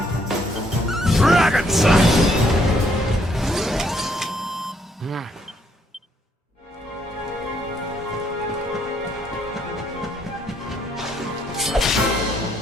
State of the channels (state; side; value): normal; both; correlation 0.70